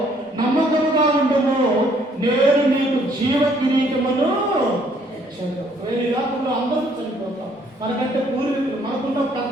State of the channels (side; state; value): both; normal; correlation 0.64